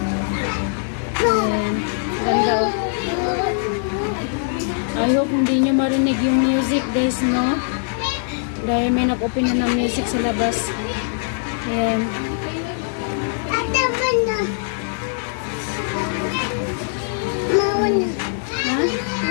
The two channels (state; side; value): silent; right; digital silence